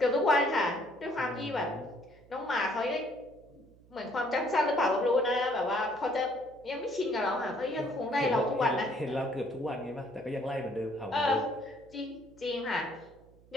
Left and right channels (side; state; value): right; noise; hum, 26 dB below the sound